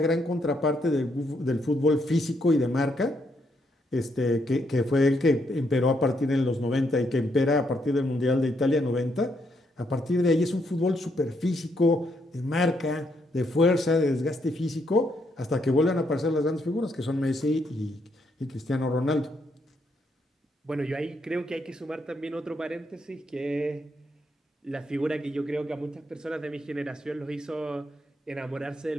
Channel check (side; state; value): both; normal; correlation 0.76